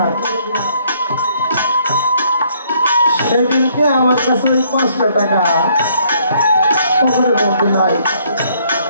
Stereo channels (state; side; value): inverted; both; correlation -0.66